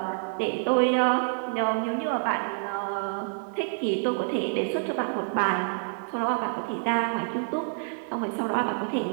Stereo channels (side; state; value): left; silent; digital silence